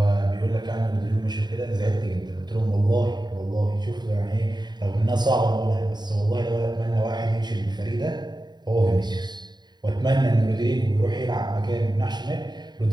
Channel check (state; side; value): late; left; 0.21 ms